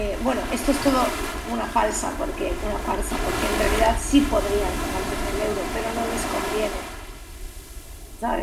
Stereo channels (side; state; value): both; identical; correlation 1.00